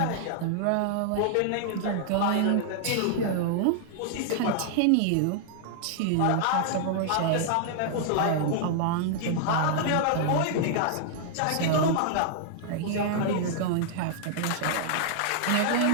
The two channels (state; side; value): different; both; correlation -0.01